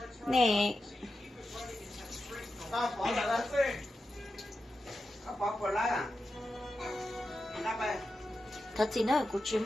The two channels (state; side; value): normal; both; correlation 0.90